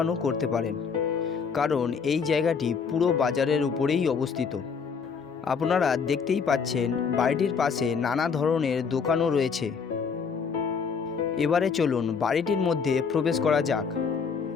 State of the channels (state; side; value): quieter; right; 5.9 dB